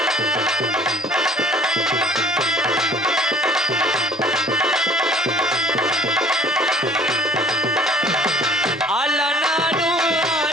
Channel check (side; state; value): both; normal; correlation 0.53